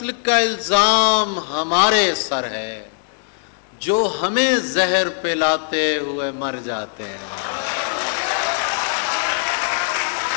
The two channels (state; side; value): silent; right; digital silence